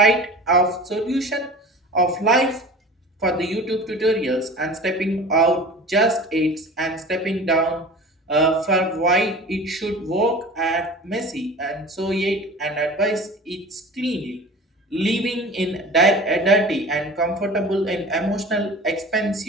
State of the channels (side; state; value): both; normal; correlation 0.38